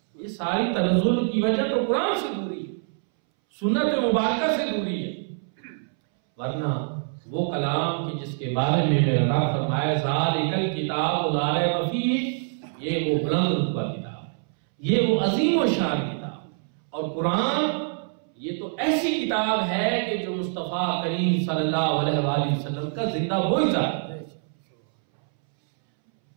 یہ ساری تنزل کی وجہ تو قرآن سے دوری ہے, سنت مبارکہ سے دوری ہے. ورنہ وہ کلام کہ جس کے بارے میں میرا رب فرمایا ذالک الکتاب لا ریب فیہ, یہ وہ بلند رتبہ کتاب ہے, یہ وہ عظیم و شان کتاب. اور قرآن یہ تو ایسی کتاب ہے کہ جو مصطفیٰ کریم صلی اللہ علیہ وآلہ وسلم کا زندہ معجزہ ہے.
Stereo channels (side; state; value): left; silent; 62 dB below the other